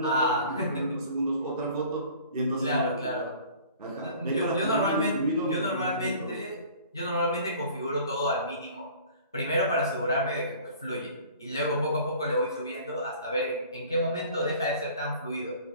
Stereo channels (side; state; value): both; inverted; correlation -0.48